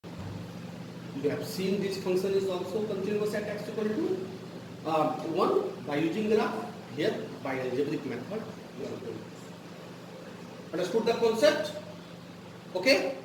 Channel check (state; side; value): identical; both; correlation 1.00